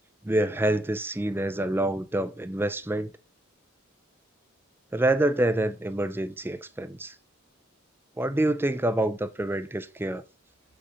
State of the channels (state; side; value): normal; both; correlation 0.78